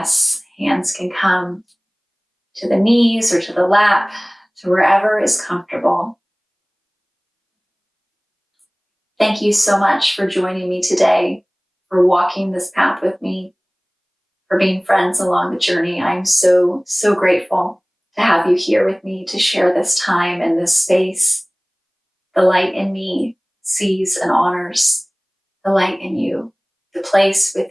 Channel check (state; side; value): identical; both; correlation 1.00